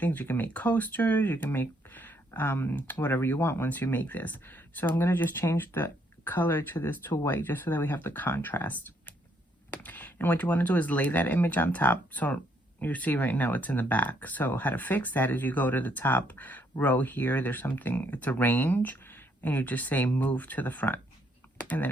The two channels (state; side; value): normal; both; correlation 0.71